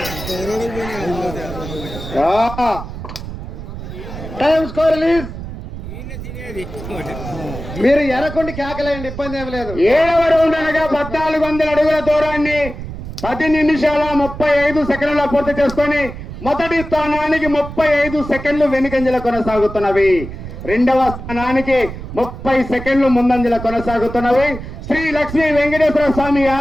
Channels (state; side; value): noise; right; rumble, 10 dB below the sound